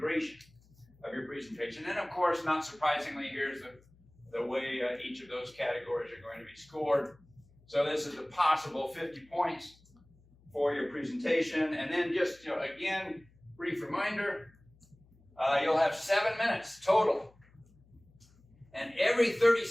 of your presentation. And of course, not surprisingly, here's the way each of those categories are going to be scored. So this is a possible 50 points for your presentation. And then just, again, brief reminder, you'll have 7 minutes total. And every 30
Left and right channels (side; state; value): left; noise; hum, 29 dB below the sound